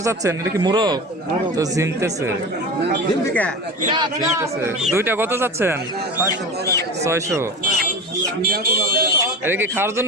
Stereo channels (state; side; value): normal; both; correlation 0.29